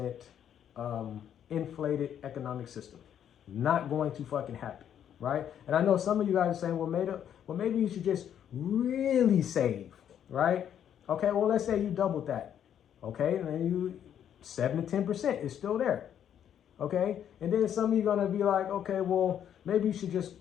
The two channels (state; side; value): quieter; right; 9.5 dB